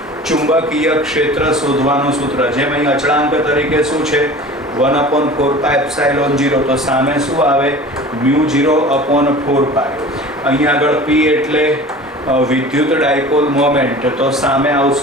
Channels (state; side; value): normal; both; correlation 0.40